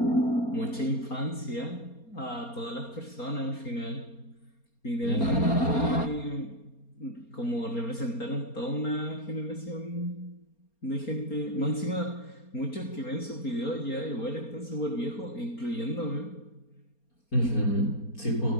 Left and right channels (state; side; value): late; right; 4.3 ms